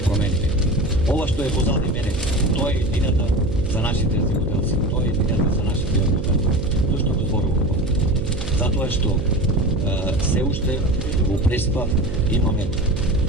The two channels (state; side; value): noise; right; hum, 6 dB below the sound